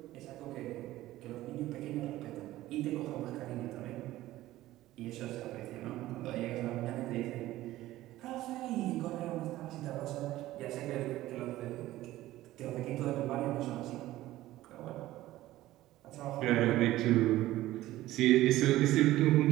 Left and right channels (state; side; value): quieter; left; 15.8 dB